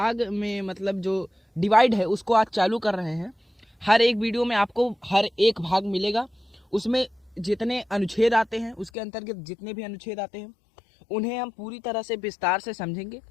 में मतलब जो डिवाइड है उसको आज चालू कर रहे हैं। हर एक वीडियो में आपको हर एक भाग मिलेगा, उसमें जितने अनुच्छेद आते हैं उसके अंतर्गत जितने भी अनुच्छेद आते हैं उन्हें हम पूरी तरह से विस्तार से समझेंगे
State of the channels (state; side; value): drops out; right; at 8.9 s